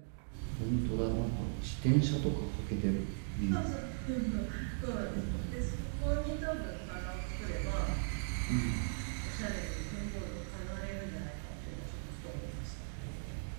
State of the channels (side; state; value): left; silent; digital silence